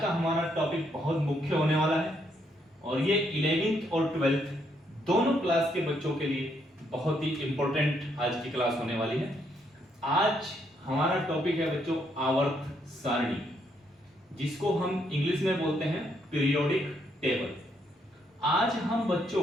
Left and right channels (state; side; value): normal; both; correlation 0.74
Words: हमारा टॉपिक बहुत मुख्य होने वाला है और ये 11th और 12th दोनों क्लास के बच्चों के लिए बहुत ही इंपॉर्टेंट आज की क्लास होने वाली है। आज हमारा टॉपिक है बच्चों आवर्त सारणी, जिसको हम इंग्लिश में बोलते हैं पीरियोडिक टेबल। आज हम